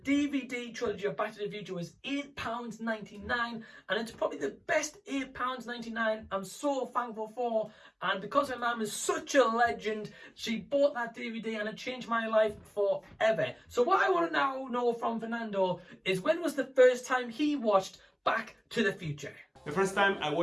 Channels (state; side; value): identical; both; correlation 1.00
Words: trilogy of Back to the Future was £8.99, and it's probably the best £8.99 I'm so thankful for. And because my mum is such a legend, she bought that DVD and it changed my life forever. So what I want to now know from Fernando is, when was the first time he watched Back to the Future? The first time I